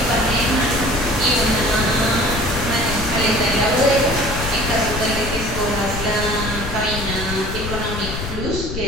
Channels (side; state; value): left; noise; rumble, 7 dB below the sound